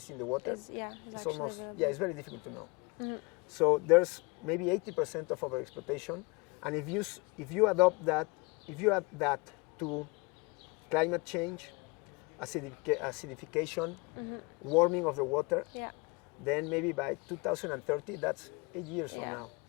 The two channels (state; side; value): quieter; right; 28.0 dB